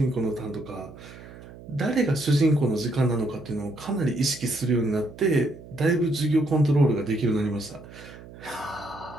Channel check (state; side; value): noise; right; hum, 17 dB below the sound